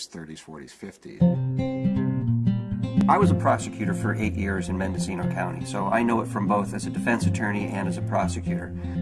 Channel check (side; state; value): both; identical; correlation 1.00